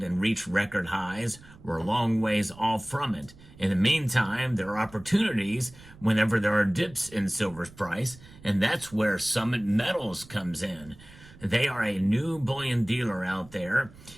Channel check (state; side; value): noise; right; rumble, 21 dB below the sound